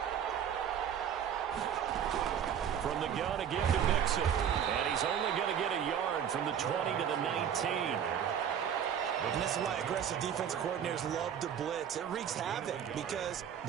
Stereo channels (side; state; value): left; quieter; 8.7 dB